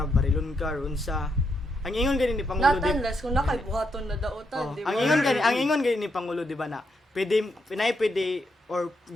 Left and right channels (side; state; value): both; normal; correlation 0.80